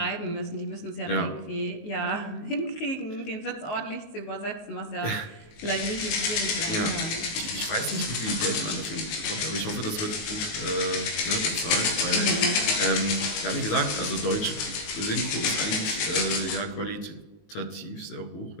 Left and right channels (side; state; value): right; late; 19 ms